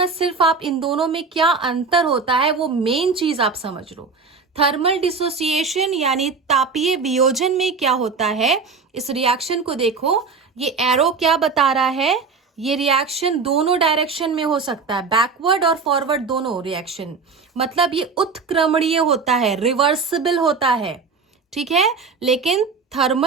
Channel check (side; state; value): left; quieter; 4.8 dB